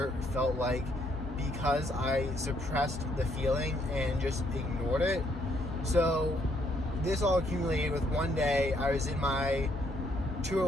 felt like because I suppressed the feeling and just ignored it. So this all accumulated with one day I was in my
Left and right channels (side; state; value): both; normal; correlation 0.71